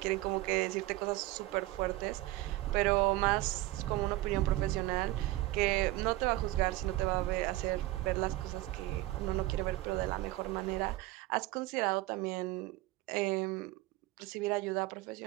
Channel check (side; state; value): left; quieter; 18.0 dB